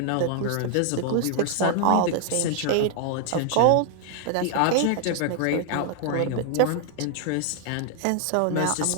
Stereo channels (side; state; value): both; different; correlation 0.00